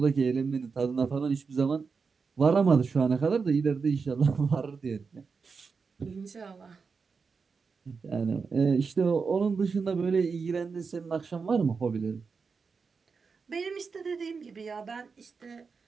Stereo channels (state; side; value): quieter; left; 5.1 dB